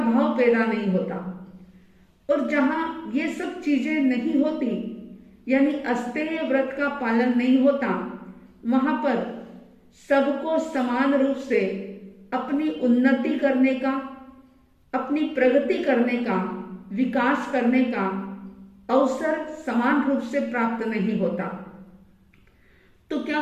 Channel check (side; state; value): both; identical; correlation 1.00